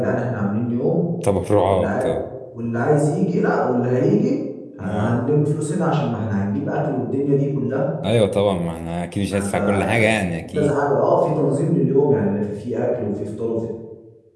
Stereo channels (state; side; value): identical; both; correlation 1.00